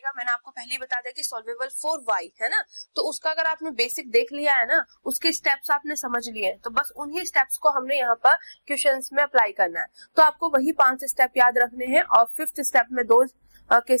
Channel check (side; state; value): both; inverted; correlation -1.00